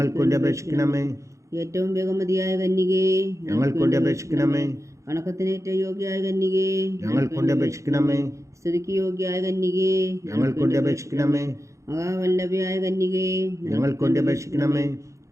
വേണ്ടി അപേക്ഷിക്കണമേ. ഏറ്റവും ബഹുമതിയായ കന്യകേ, ഞങ്ങൾക്ക് വേണ്ടി അപേക്ഷിക്കണമേ. വണക്കത്തിന് ഏറ്റവും യോഗ്യയായ കന്യകേ, ഞങ്ങൾക്ക് വേണ്ടി അപേക്ഷിക്കണമേ. സ്തുതിക്ക് യോഗ്യയായ കന്യകേ, ഞങ്ങൾക്ക് വേണ്ടി അപേക്ഷിക്കണമേ. മഹാവല്ലഭയായ കന്യകേ, ഞങ്ങൾക്ക് വേണ്ടി അപേക്ഷിക്കണമേ.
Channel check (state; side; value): late; left; 0.15 ms